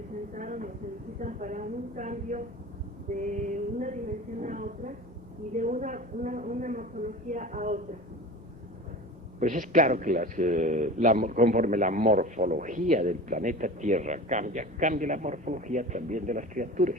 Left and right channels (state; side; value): normal; both; correlation 0.35